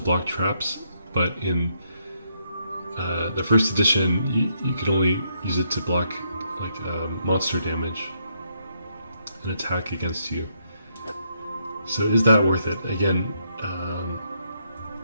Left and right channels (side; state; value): both; inverted; correlation -0.76